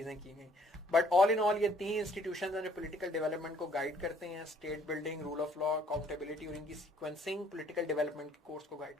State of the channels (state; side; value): normal; both; correlation 0.61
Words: की गई। बट ऑल इन ऑल ये 3 इंस्टीट्यूशंस जो पॉलिटिकल डेवलपमेंट को गाइड करते हैं, state building, rule of law, accountability, और इनकी सीक्वेंसिंग पॉलिटिकल डेवलपमेंट के कोर्स को गाइड